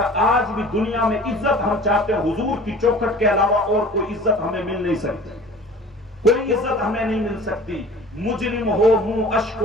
آج بھی دنیا میں عزت ہم چاہتے ہیں، حضور کی چوکھٹ کے علاوہ اور کوئی عزت ہمیں مل نہیں سکتی۔ کوئی عزت ہمیں نہیں مل سکتی. مجرم ہو منہ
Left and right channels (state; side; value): noise; right; rumble, 30 dB below the sound